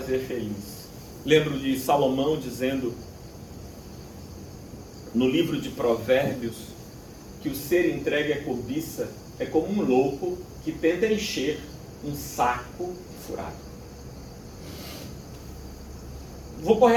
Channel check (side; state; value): both; identical; correlation 1.00